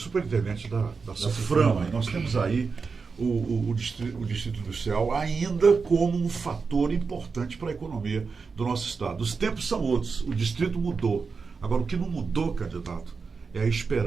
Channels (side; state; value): left; quieter; 4.9 dB